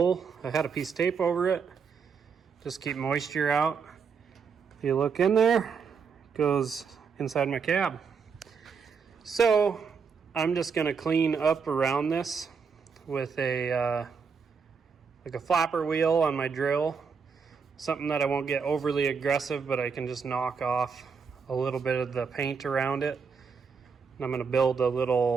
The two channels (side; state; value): left; quieter; 5.8 dB